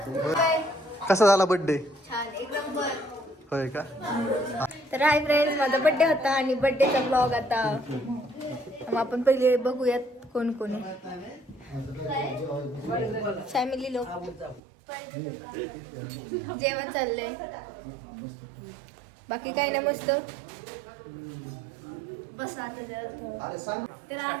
कसा झाला बर्थडे? छान एक नंबर. होय का? तर हाय फ्रेंड्स माझा बर्थडे होता आणि बर्थडेचा ब्लॉग आता मग आपण पहिले बघूयात कोण कोण आहे. फॅमिली लोक जेवण चाललंय. बाकी काय नाही, मस्त. बस आता तर आज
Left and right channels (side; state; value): left; drops out; at 14.6 s